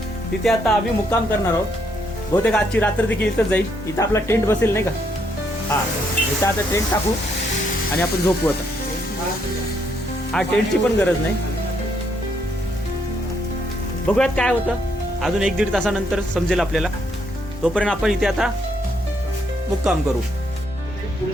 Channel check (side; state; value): both; normal; correlation 0.74